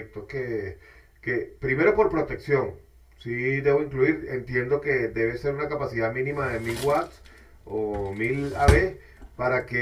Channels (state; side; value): identical; both; correlation 1.00